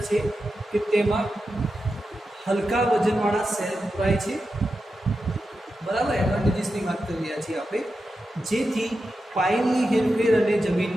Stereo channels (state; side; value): normal; both; correlation 0.90